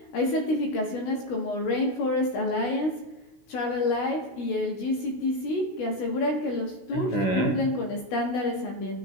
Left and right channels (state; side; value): late; right; 16 ms